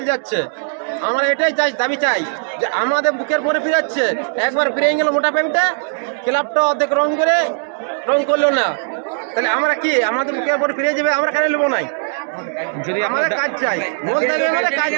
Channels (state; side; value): silent; left; digital silence